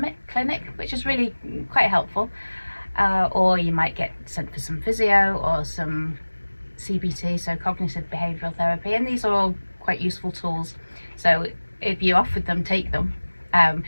which is really quite helpful, or you might get sent for some physio or some CBT, so cognitive behavioural therapy, and these are all quite useful tools So if you offered them, take them.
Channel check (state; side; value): inverted; both; correlation -1.00